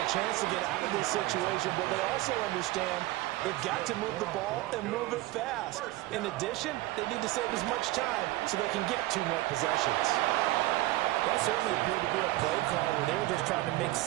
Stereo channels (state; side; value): quieter; left; 18.2 dB